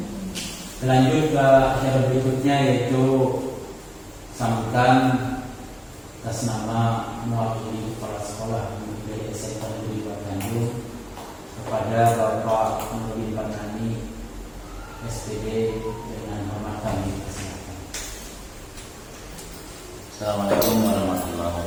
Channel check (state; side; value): identical; both; correlation 1.00